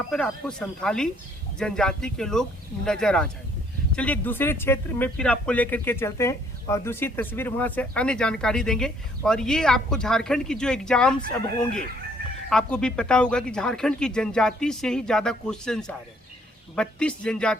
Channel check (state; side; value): normal; both; correlation 0.64